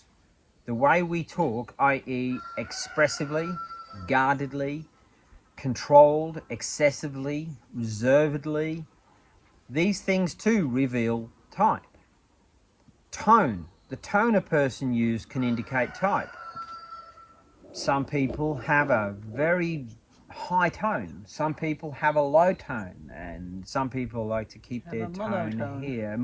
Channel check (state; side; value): identical; both; correlation 1.00